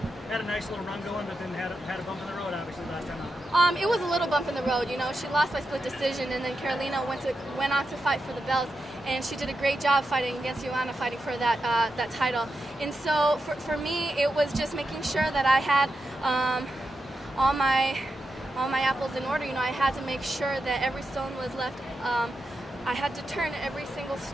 had a nice little run going, but then had a bump in the road, obviously, last time out? It was a little bump in the road. You know, she lost by split decision, and then Carolina went on to fight for the belt, and she did a great job fighting against Joanna, fighting for that title. And so for me, it was just making sure that I had all my apples in order. You know, I had to make sure that every stone was left. I had to turn every single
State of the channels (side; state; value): both; normal; correlation 0.88